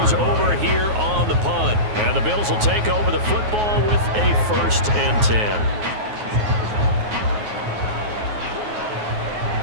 over here on the punt. And the Bills will take over the football with a 1st and 10.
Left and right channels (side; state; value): left; late; 9.5 ms